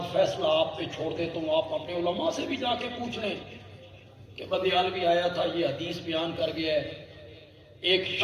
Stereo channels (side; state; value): both; identical; correlation 1.00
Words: فیصلہ آپ پہ چھوڑ دیتا ہوں۔ آپ اپنے علماء سے بھی جا کے پوچھ لیں کہ بدیالوی آیا تھا، یہ حدیث بیان کر گیا ہے۔ ایک